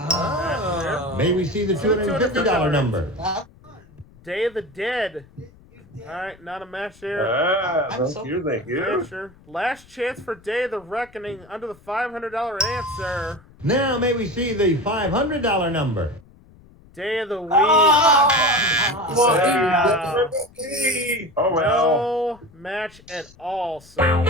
May we see the $250 number? Day of the Dead. All right, not a match there. Thank you. Sure. Last chance for Day of the Reckoning under the $500 answer. Now may we see the $500 number? Day of the Week. Oh, well. No match at all, so.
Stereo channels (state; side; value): noise; left; rumble, 26 dB below the sound